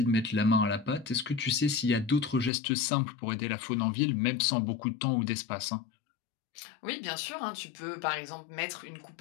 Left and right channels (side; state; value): right; drops out; at 2.5 s